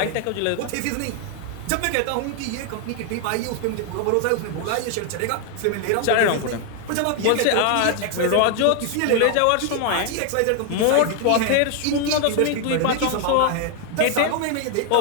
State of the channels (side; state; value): both; different; correlation 0.00